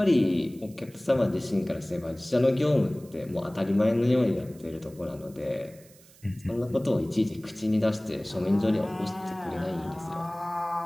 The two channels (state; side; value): noise; right; hiss, 25 dB below the sound